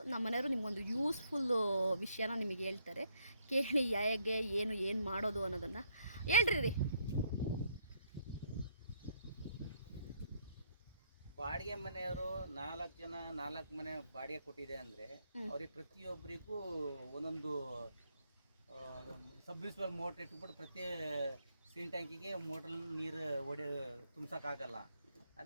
ನಮ್ಮ ಮನೆಯವರು ನಿಮಗೊಂದು ಯೂಸ್ಫುಲ್ಲು ವಿಷಯನ ನಿಮಗೆ ಹೇಳ್ತಾರೆ, ಕೇಳಿ ಹೇಗೆ ಏನು ಮಾಡೋದು ಅನ್ನೋದನ್ನು ಹೇಳ್ರಿ. ಬಾಡಿಗೆ ಮನೆಯವರು 4 ಜನ 4 ಮನೆ ಬಾಡಿಗೆ ಕೊಟ್ಟಿದೆ ಅಂದರೆ ಅವ್ರಿಗೆ ಪ್ರತಿಯೊಬ್ಬರಿಗೂ ಒಂದೊಂದು ಸಬ್ಮಿರ್ಸಿಬಲ್ ಮೋಟ್ರ್ ಇಟ್ಬಿಟ್ಟು ಪ್ರತಿ ಸೀನ್ ಟ್ಯಾಂಕಿಗೆ ಮೋಟ್ರ್ ನೀರು ತುಂಬಿಸೋಕ್ಕಾಗಲ್ಲ.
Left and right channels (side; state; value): both; inverted; correlation -0.71